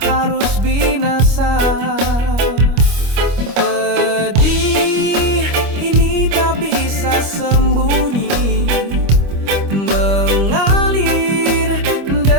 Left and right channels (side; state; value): left; late; 25 ms